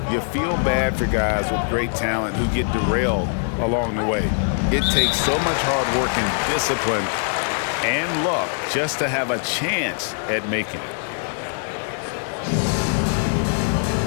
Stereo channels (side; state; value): right; silent; 64 dB below the other